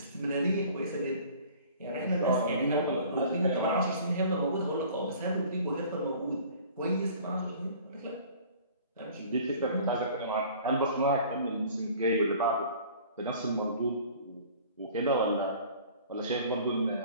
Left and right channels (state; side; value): inverted; both; correlation -0.48